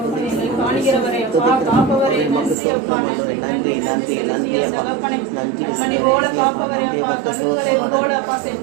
எங்களை காண்கிறவரே அப்பா, காப்பவரே, நன்றி அப்பா, நன்றி நன்றி நன்றி நன்றி தகப்பனை. மணி போல காப்பவரே அப்பா, கழுகுகளை போல அப்பா,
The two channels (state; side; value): drops out; left; at 2.6 s